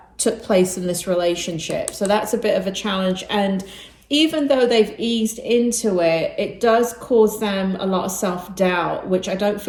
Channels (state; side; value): identical; both; correlation 1.00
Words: took place in this relationship. So that's a bit of a challenge. And even though they've eased into it, it does cause them a lot of self-doubt, which I don't